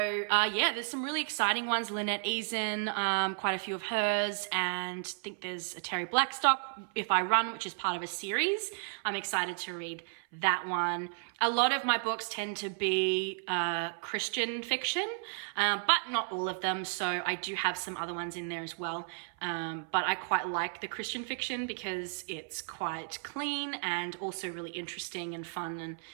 there's some really exciting ones. Lynette Eason, quite a few of hers, and I think there's a Terry Blackstock, If I Run, which is part of a series. I'm excited to read that one. A lot of my books tend to be Christian fiction, but not all of them. So I do have some other ones in there as well. But I quite like the Christian fiction because it's quite clean and also really interesting and fun. And,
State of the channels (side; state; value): left; silent; 56 dB below the other